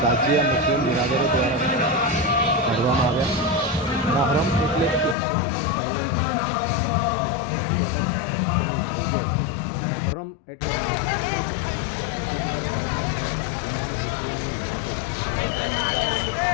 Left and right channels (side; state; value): right; drops out; at 5.2 s